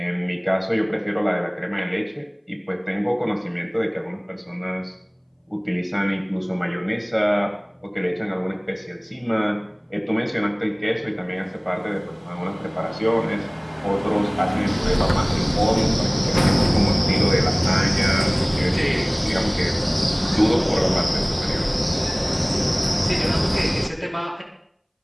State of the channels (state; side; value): identical; both; correlation 1.00